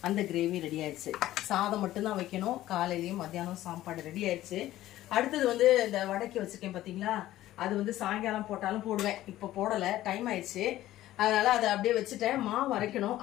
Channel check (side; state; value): right; quieter; 14.6 dB